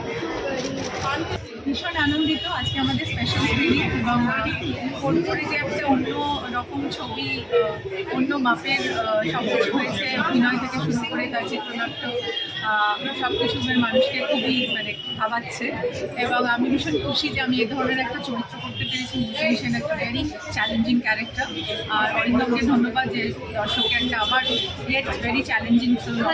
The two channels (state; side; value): identical; both; correlation 1.00